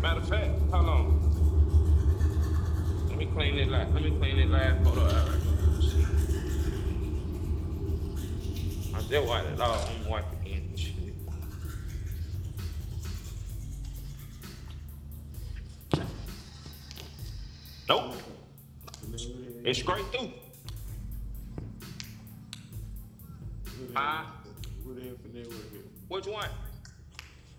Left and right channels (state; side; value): identical; both; correlation 1.00